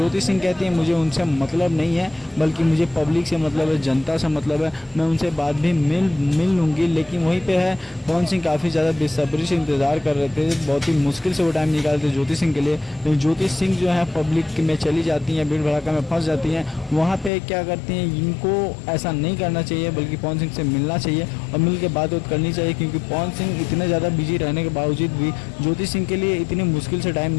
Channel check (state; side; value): drops out; right; at 17.3 s